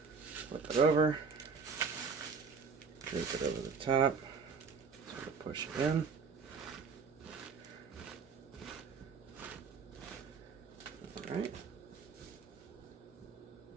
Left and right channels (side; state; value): left; quieter; 5.2 dB